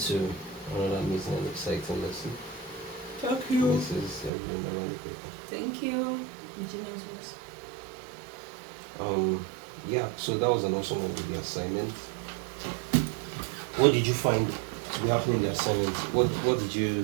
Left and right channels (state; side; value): drops out; left; at 4.3 s